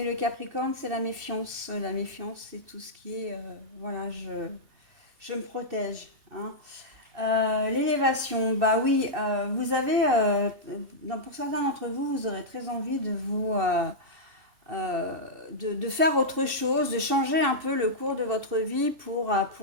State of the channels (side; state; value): left; late; 2.7 ms